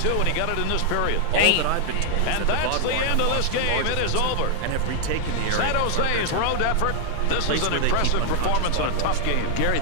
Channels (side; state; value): both; different; correlation 0.00